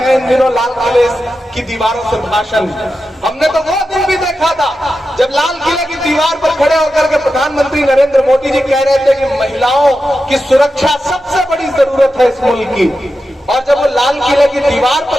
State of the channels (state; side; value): normal; both; correlation 0.90